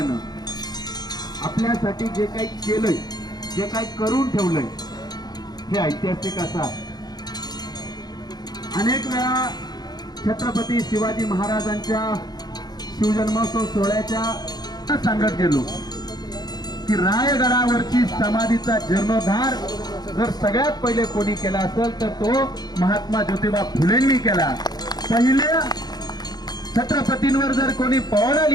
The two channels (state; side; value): late; right; 0.19 ms